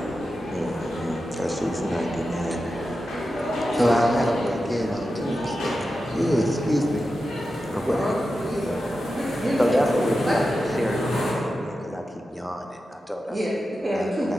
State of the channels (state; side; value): normal; both; correlation 0.91